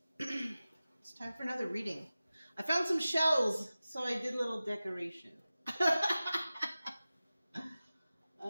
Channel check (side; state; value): both; inverted; correlation -0.95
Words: It's time for another reading. I found some shells, so I did a little decoration.